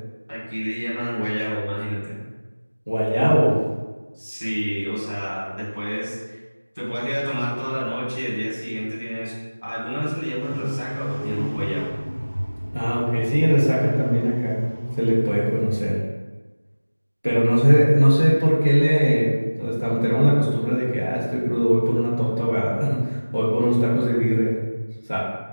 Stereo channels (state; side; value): inverted; both; correlation -1.00